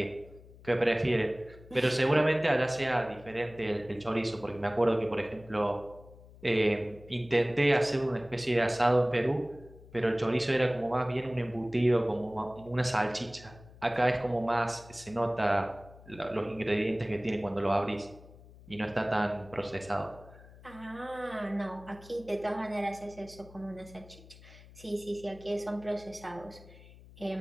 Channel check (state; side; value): noise; left; hum, 21 dB below the sound